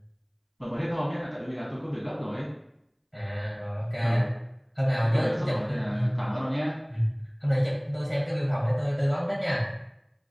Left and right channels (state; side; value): identical; both; correlation 1.00